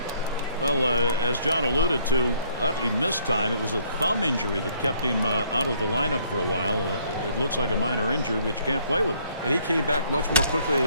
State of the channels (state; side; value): inverted; both; correlation -0.65